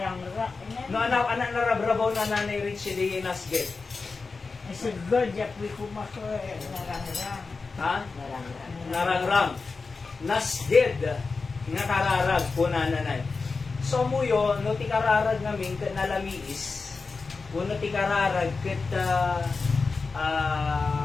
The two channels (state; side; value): quieter; right; 4.3 dB